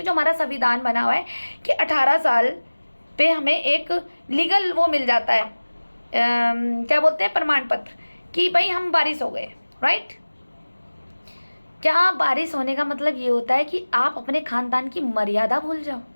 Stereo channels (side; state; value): both; inverted; correlation -1.00